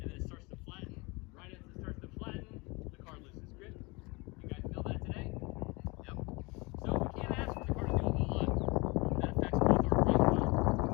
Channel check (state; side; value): quieter; right; 26.1 dB